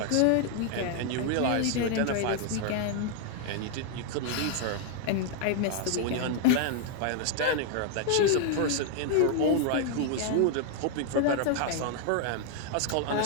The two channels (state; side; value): different; both; correlation 0.00